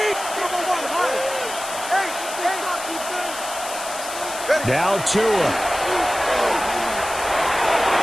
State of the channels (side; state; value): left; noise; hiss, 9 dB below the sound